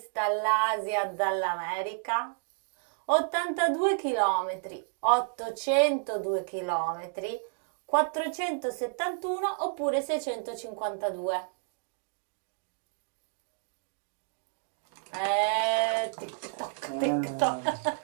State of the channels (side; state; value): left; silent; digital silence